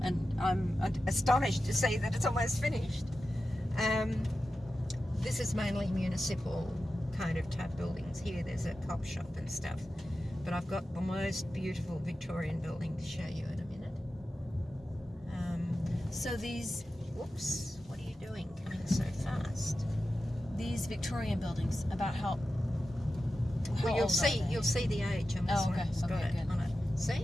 and I'm astonished to see that it's almost finished. This is mainly municipal kind of type buildings. Here there's a cop shop and stuff, but I've got the most beautiful Victorian building to show you in a minute. So these Whoops, what are you doing coming so fast? Victorian buildings, about how Well, old are you'll see the age on this Oh, one. okay. It's got Okay, it good. on it.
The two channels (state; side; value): normal; both; correlation 0.92